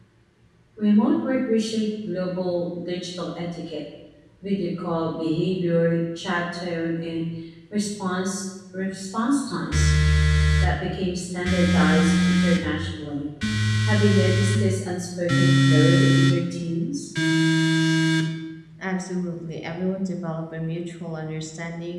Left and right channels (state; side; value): identical; both; correlation 1.00